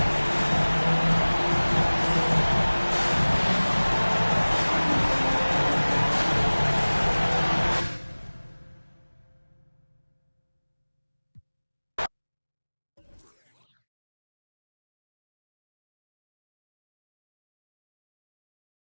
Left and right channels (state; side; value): inverted; both; correlation -1.00